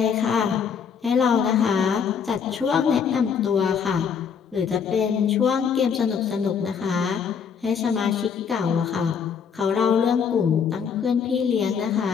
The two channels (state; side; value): quieter; right; 6.8 dB